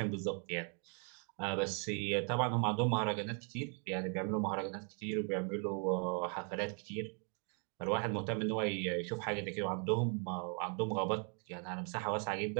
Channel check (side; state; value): left; quieter; 39.7 dB